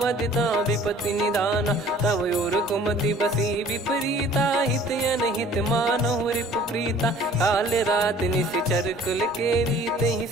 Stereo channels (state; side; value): normal; both; correlation 0.51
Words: तहाँ विपत्ति निदाना तव और कुमति बसी विपरीता हित अनहित मानहु रिपु प्रीता काल रात निशिचर कुल केरी तहि